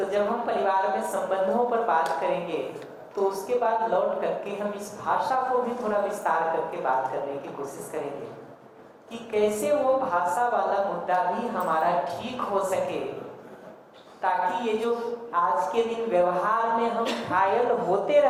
जब हम परिवार में संबंधों पर बात करेंगे तो उसके बाद लौट करके हम इस भाषा को भी थोड़ा विस्तार करके बात करने की कोशिश करेंगे कि कैसे वो भाषा वाला मुद्दा भी हमारा ठीक हो सके, ताकि ये जो आज के दिन व्यवहार में हम घायल होते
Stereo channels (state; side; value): identical; both; correlation 1.00